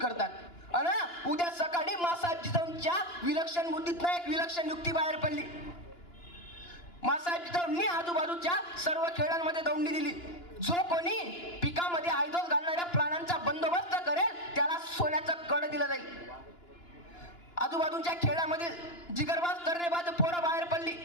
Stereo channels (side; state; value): right; late; 2.9 ms